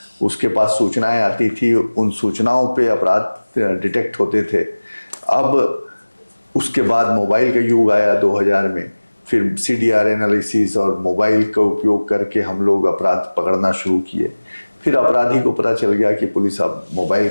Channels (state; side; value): inverted; both; correlation -1.00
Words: उसके पास सूचनाएं आती थी, उन सूचनाओं पे अपराध डिटेक्ट होते थे। अब उसके बाद मोबाइल का युग आया 2000 में, फिर CDR एनालिसिस और मोबाइल का उपयोग करके हम लोग अपराध पकड़ना शुरू किए। फिर अपराधी को पता चल गया कि पुलिस अब मोबाइल